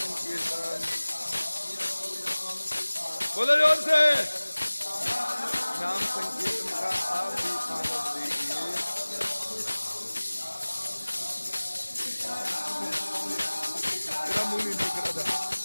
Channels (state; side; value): inverted; both; correlation -1.00